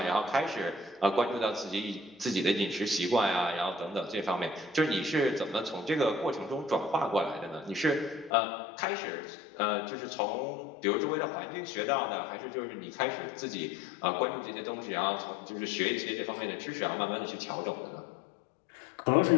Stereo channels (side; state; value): right; drops out; at 8.3 s